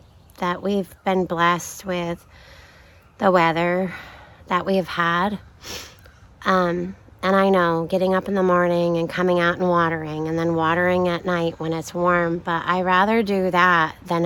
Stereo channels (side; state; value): both; identical; correlation 1.00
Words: we've been blessed with the weather that we've had. And I know getting up in the morning and coming out and watering, and then watering at night when it's warm, but I rather do that than